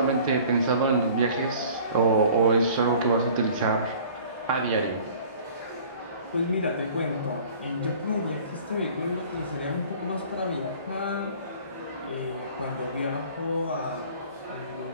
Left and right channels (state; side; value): inverted; both; correlation -0.48